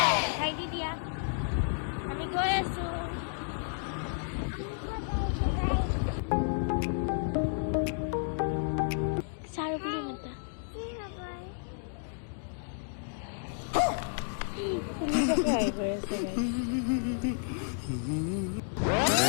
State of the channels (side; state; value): right; silent; digital silence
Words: খাই দি দিয়া, আমি গৈ আছো। চাৰু বুলি মাতা